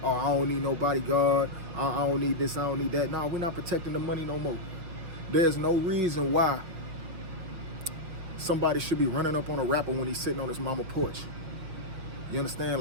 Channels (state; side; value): late; left; 5.9 ms